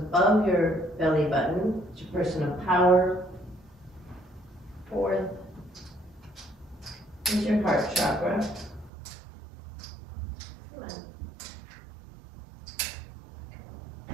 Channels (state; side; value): drops out; left; at 8.9 s